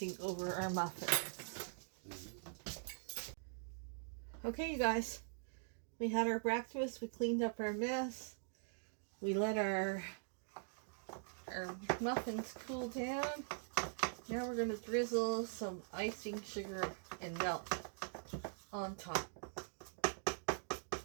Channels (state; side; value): silent; left; digital silence